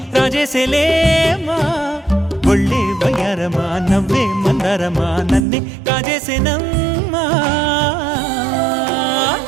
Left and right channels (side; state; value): left; drops out; at 5.4 s